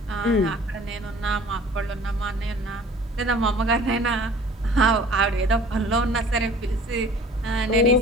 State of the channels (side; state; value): both; normal; correlation 0.48